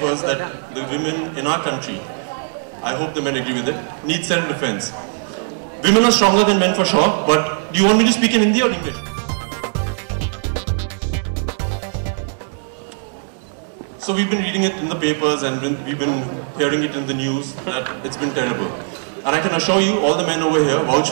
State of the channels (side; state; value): left; silent; 66 dB below the other